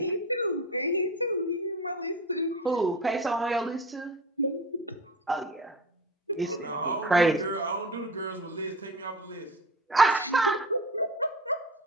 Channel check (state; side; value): normal; both; correlation 0.32